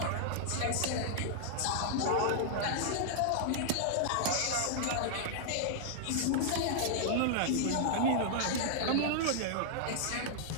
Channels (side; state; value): both; different; correlation -0.01